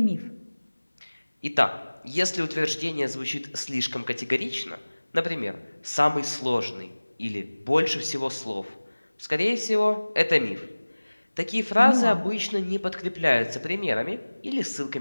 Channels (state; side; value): inverted; both; correlation -1.00